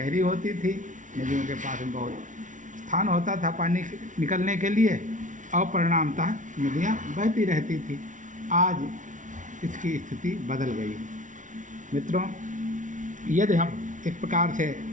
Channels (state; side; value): late; left; 0.37 ms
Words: होती थी, नदियों के पास में बहुत स्थान होता था पानी निकलने के लिए, और परिणामतः नदियाँ बहती रहती थी। आज इसकी स्थिति बदल गई है। मित्रों, यदि हम इस प्रकार से